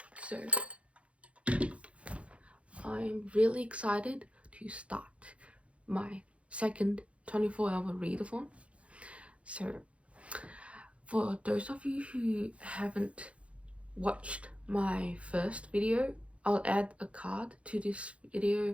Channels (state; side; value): late; left; 0.062 ms